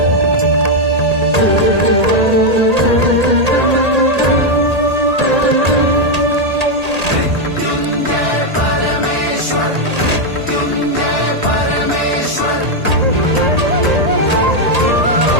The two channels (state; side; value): late; left; 1.8 ms